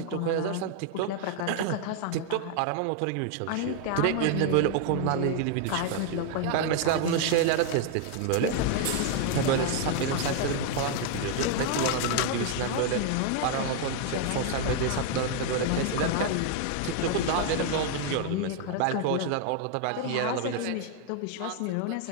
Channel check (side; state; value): both; different; correlation 0.00